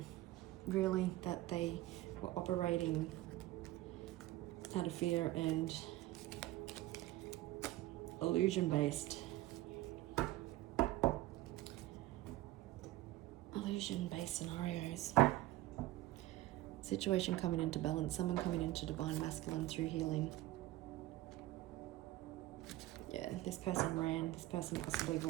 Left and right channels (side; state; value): left; quieter; 16.6 dB